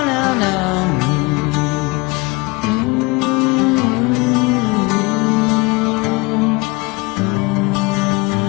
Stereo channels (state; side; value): quieter; right; 25.0 dB